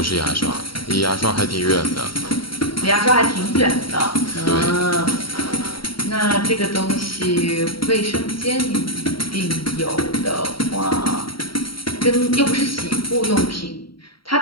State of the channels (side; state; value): right; late; 0.74 ms